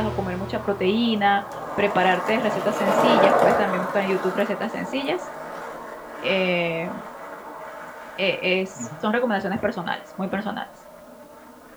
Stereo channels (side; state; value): both; identical; correlation 1.00